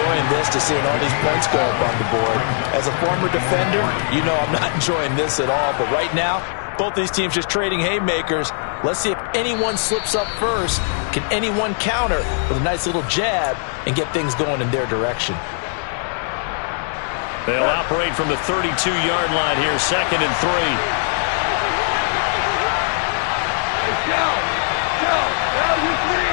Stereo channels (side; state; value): right; silent; 62 dB below the other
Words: this to seeing all these points go up on the board. As a former defender, you know I'm not enjoying this at all, but right now, both these teams just trading haymakers. Let's see if anyone slips up first. Can anyone counter with a nice little jab and get things going in their direction? They'll operate from the 32-yard line here, 2nd and 3.